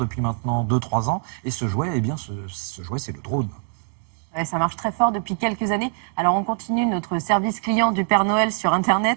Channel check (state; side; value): silent; left; 56 dB below the other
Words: maintenant 2-3 ans. Et ce jouet, eh bien, ce jouet, c'est le drone. Ouais, ça marche très fort depuis quelques années. Alors on continue notre service client du Père Noël sur Internet